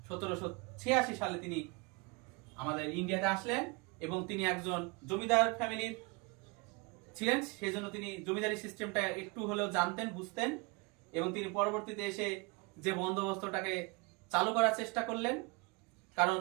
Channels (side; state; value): left; quieter; 28.2 dB